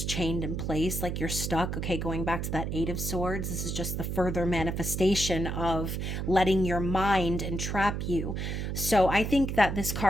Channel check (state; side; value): noise; right; hum, 3 dB below the sound